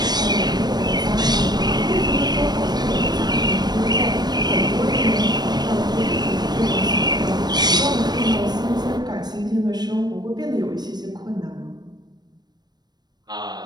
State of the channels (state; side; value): late; left; 0.20 ms